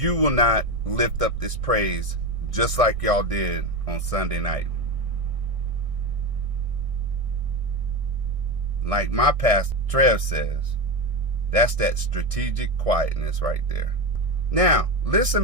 will not lift up this praise just like y'all did on Sunday night. Like my pastor Trev says, that's that strategic quietness right there. Now, let's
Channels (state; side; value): late; left; 1.6 ms